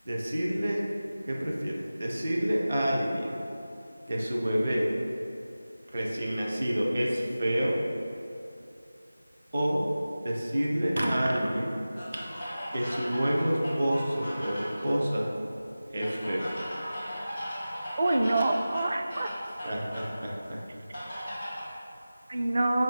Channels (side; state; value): both; inverted; correlation -0.96